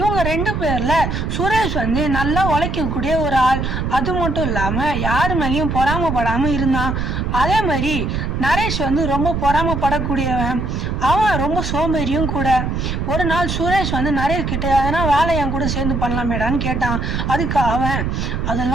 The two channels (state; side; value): noise; right; rumble, 2 dB below the sound